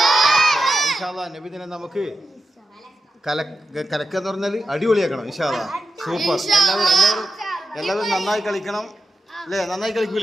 ഇൻഷാ അല്ലാഹ് നബിദിനം നമുക്ക് കലക്കെന്ന് പറഞ്ഞാൽ അടിപൊളിയാക്കണം. ഇൻഷാ അല്ലാഹ് സൂപ്പർ. എല്ലാവരും നന്നായി കളിക്കണം അല്ലേ? നന്നായി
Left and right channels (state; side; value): normal; both; correlation 0.90